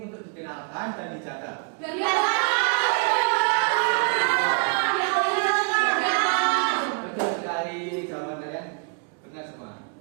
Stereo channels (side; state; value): left; quieter; 39.9 dB